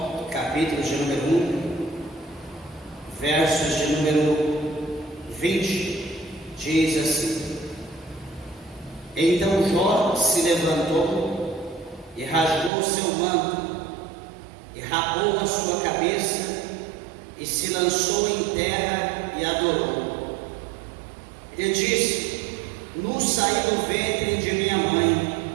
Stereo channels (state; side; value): drops out; left; at 12.7 s